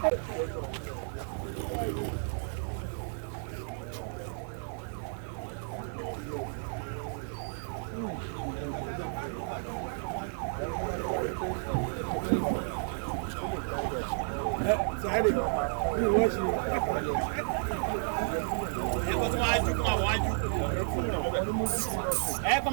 Sáré, bí wọ́n ṣe. Ẹ kọ́ tí wọ́n á jú kó máa wọ́n á jú. Ẹ kọ́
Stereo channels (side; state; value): left; silent; 56 dB below the other